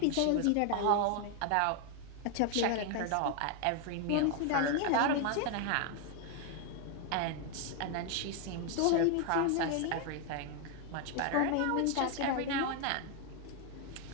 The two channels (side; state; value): both; different; correlation 0.01